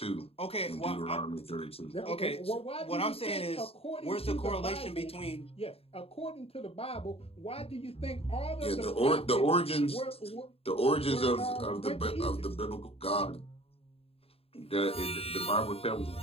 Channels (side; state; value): right; late; 0.28 ms